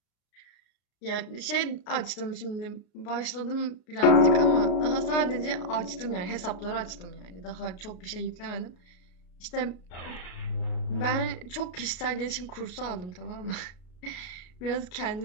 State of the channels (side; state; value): right; late; 33 ms